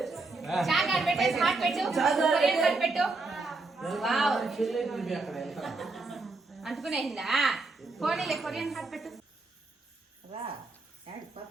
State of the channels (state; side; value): quieter; left; 3.5 dB